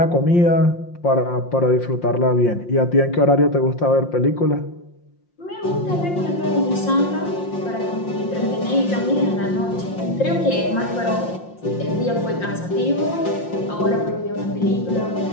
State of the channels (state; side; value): late; right; 5.7 ms